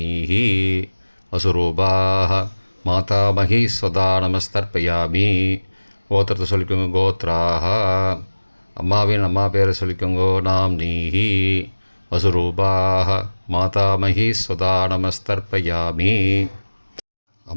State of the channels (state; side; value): inverted; both; correlation -1.00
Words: வசுரூபாக மாதாமகி ஸ்வதா நமஸ்தர்ப்பயாமி. கோத்திரத்தை சொல்லிக்கோங்க. கோத்ராக. அம்மாவின் அம்மா பேரை சொல்லிக்கோங்கோ. நாம் நீஹி. வசுரூபாக மாதாமகி ஸ்வதா நமஸ்தர்ப்பயாமி.